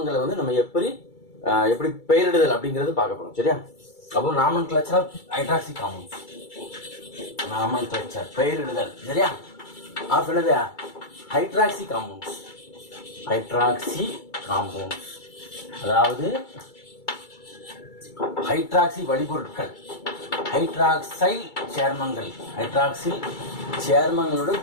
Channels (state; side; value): late; right; 2.3 ms